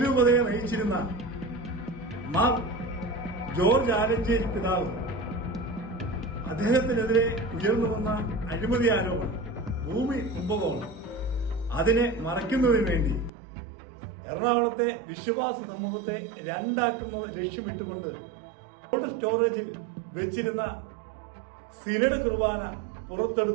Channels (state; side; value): drops out; left; at 13.3 s